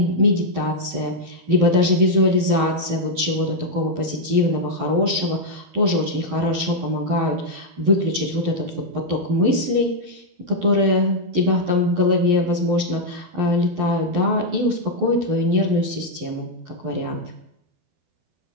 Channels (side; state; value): left; late; 11 ms